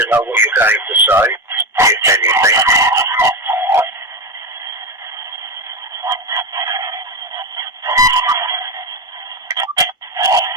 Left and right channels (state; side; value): normal; both; correlation 0.14